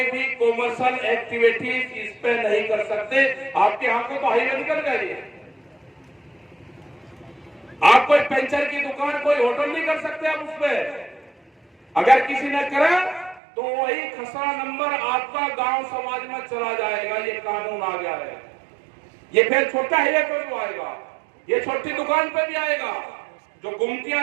भी कॉमर्शियल एक्टिविटीज इस पे नहीं कर सकते। आपके यहाँ को तो हाईवे निकल गए। आप कोई पंचर की दुकान, कोई होटल नहीं कर सकते आप उस पे। अगर किसी ने करा तो वही खसरा नंबर आपका गांव समाज में चला जाएगा। ये कानून आ गया है। ये फिर छोटा हाईवे पे भी आएगा, ये छोटी दुकान पे भी आएगा। जो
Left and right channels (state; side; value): drops out; left; at 13.4 s